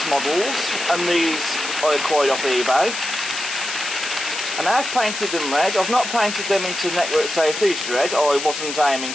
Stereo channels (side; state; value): left; noise; hiss, 6 dB below the sound